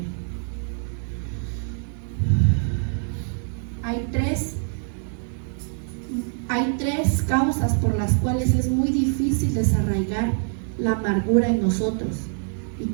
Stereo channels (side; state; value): left; silent; 59 dB below the other